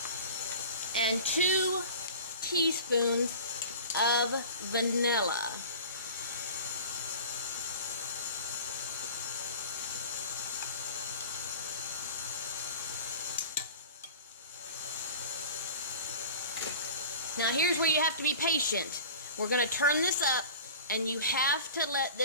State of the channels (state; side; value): inverted; both; correlation -0.39